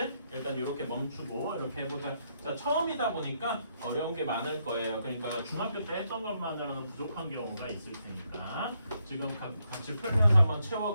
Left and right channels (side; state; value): both; inverted; correlation -0.77